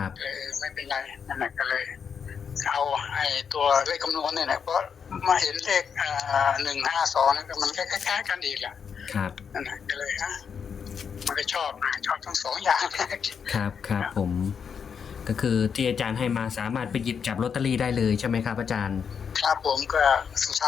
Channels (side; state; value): right; quieter; 6.8 dB